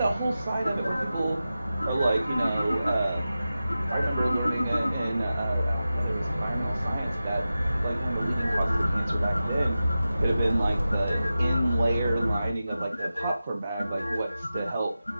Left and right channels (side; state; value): both; inverted; correlation -0.93